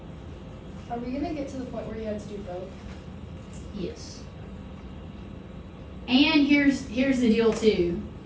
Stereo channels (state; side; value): identical; both; correlation 1.00